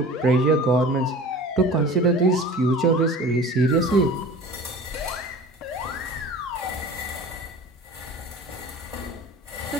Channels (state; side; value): normal; both; correlation 0.39